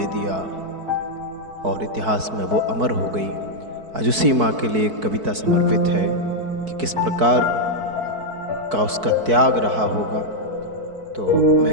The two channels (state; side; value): late; left; 4.6 ms